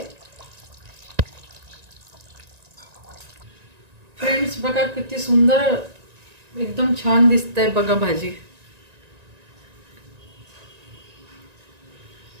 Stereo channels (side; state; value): left; late; 1.9 ms